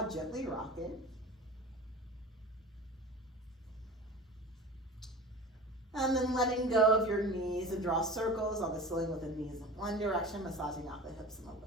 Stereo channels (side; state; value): both; normal; correlation 0.35